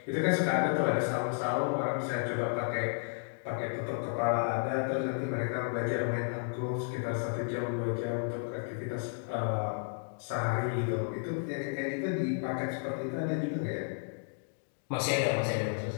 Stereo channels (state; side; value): silent; right; digital silence